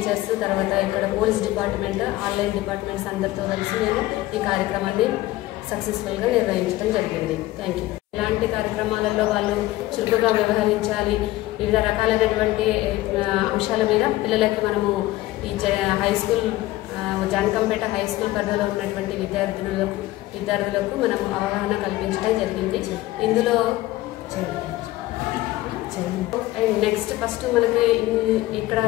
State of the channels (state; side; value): quieter; right; 17.2 dB